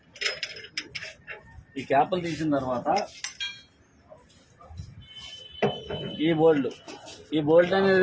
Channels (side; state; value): both; identical; correlation 1.00